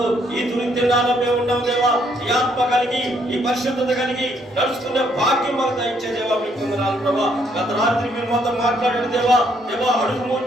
ఈ తుని దినాల్లో మేము ఉన్నాం దేవా. ఈ ఆత్మ కలిగి ఈ పరిశుద్ధత కలిగి నడుచుకునే భాగ్యం మాకు దయచే దేవా. మీ కొందరాలు ప్రభా. గత రాత్రి మీరు మాతో మాట్లాడారు దేవా. దేవా అడుగు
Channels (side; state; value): both; normal; correlation 0.70